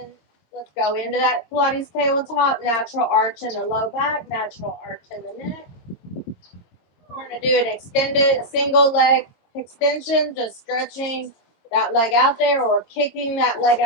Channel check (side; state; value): right; late; 22 ms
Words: let's go into that Pilates tabletop. Natural arch in the low back, natural arch in the neck. We're going to do an extended, a single leg extension, just stretching that leg out there or kicking that leg